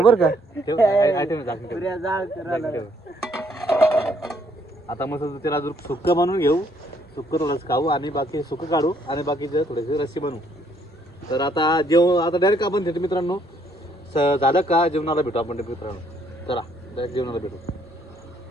का. आता मस्त त्याला सुक्क बनवून घेऊ. सुक्क थोडंसं खाऊ आणि बाकी सुक्क काढू आणि बाकीचे थोडेसे रस्सी बनवू. तर आता आता डायरेक्ट आपण भेटू मित्रांनो. झालं का जेवणाला भेटू आपण मित्रांनो. चला डायरेक्ट जेवणाला भेटू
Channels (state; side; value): normal; both; correlation 0.67